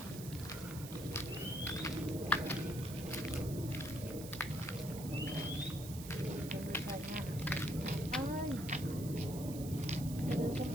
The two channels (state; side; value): noise; right; hiss, 12 dB below the sound